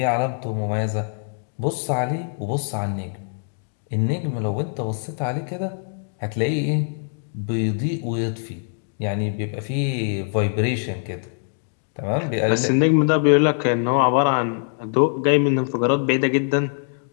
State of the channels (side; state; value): right; silent; digital silence